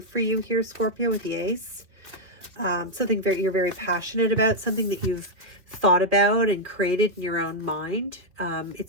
for you here, Scorpio, with the Ace. Something you're very passionate about, something that you've thought about and created in your own mind.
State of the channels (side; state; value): left; late; 3.0 ms